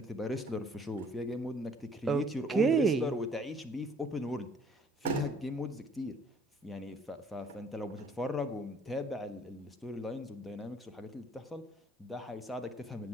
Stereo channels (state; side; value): normal; both; correlation 0.58